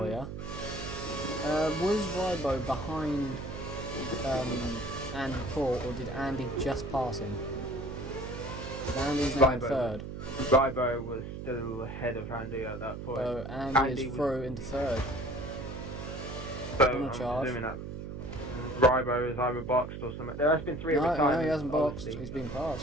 you. Was Rybo behind Andy Paul, or did Andy just pass him? Andy's now in third. Rybo was still ahead of Andy at that point. So Andy is through into third. So I'm assuming that Rybo is either boxed or something. There has been 3 retirements. No, he hasn't boxed. He's been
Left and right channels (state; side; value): noise; right; hum, 8 dB below the sound